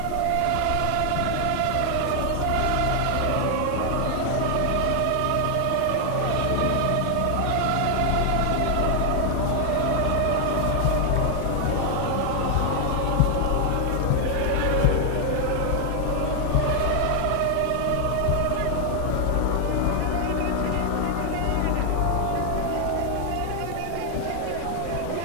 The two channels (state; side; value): different; both; correlation 0.00